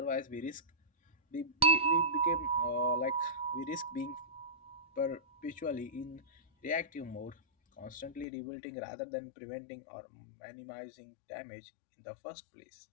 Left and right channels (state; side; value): drops out; right; at 8.2 s